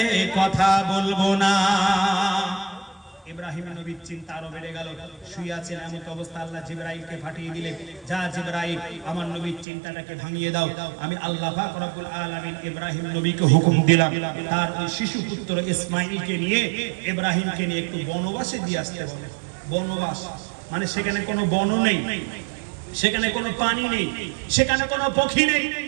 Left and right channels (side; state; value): left; drops out; at 9.7 s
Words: কথা বলবো না। ইব্রাহিম নবীর চিন্তা আরো বেড়ে গেল। শুয়ে আছেন এমন অবস্থা, আল্লাহ জিবরাইলকে পাঠিয়ে দিলেন, যা জিবরাইল আমার নবীর চিন্তাটাকে ভাঙিয়ে দাও। আমি আল্লাহ পাক রব্বুল আলামিন ইব্রাহিম নবীকে হুকুম দিলাম তার ওই শিশু পুত্র ইসমাঈলকে নিয়ে, ইব্রাহিমকে নিয়ে একটু বনবাসে দিয়ে আসতে বলে। বনবাস মানে সেখানে কোনো বন নেই, সেখানে কোনো পানি নেই, সেখানে কোনো পক্ষী নেই,